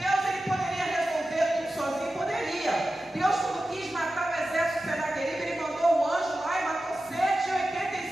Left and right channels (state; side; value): normal; both; correlation 0.93